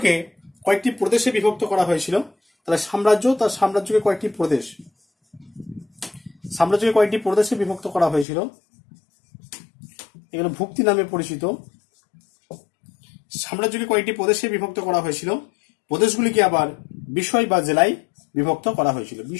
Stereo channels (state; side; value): drops out; right; at 8.2 s